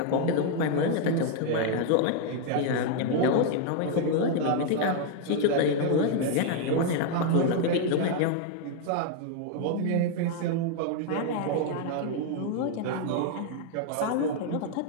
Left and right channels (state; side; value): different; both; correlation 0.00